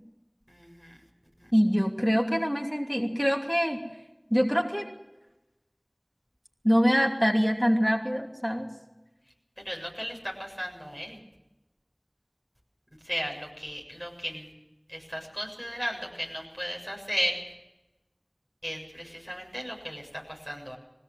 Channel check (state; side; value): identical; both; correlation 1.00